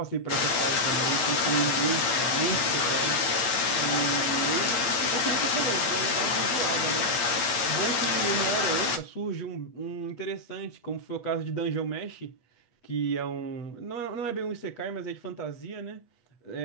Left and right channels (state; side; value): late; right; 8.4 ms